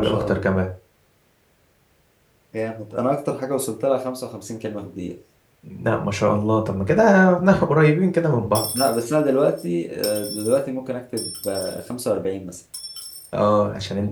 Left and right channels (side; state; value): both; identical; correlation 1.00